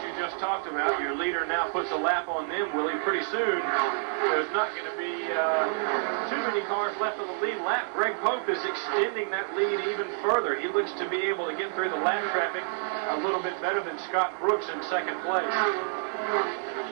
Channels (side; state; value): left; silent; 59 dB below the other